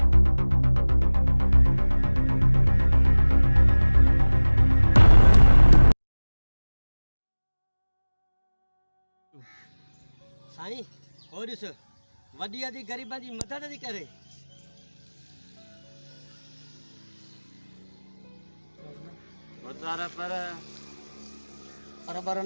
साईं हो ॾिस वॾी आदि ग़रीबां जी मदद थी करे पर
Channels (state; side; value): inverted; both; correlation -1.00